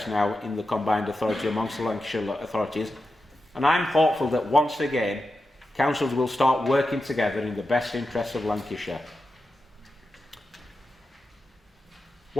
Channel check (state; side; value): normal; both; correlation 0.90